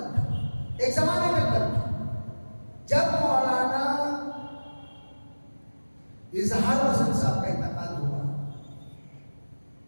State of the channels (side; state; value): both; inverted; correlation -1.00